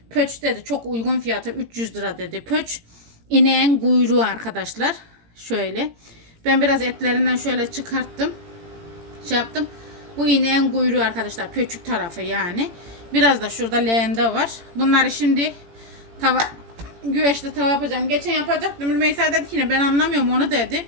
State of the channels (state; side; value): late; left; 18 ms